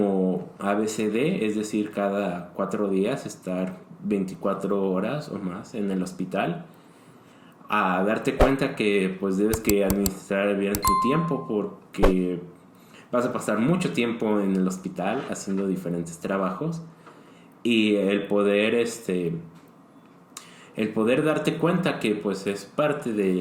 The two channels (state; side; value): identical; both; correlation 1.00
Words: ABCD, es decir, cada 4 días estar 24 horas o más en el hospital, a darte cuenta que pues debes que administrar bien tu tiempo, porque vas a pasar mucho tiempo en el hospital haciendo diferentes trabajos, y el poder darte cuenta que pues es parte